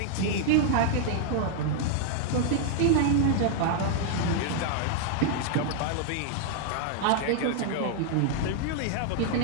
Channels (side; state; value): both; different; correlation 0.00